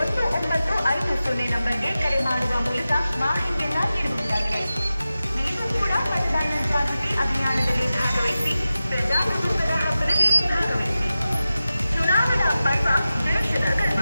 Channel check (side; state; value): both; inverted; correlation -0.94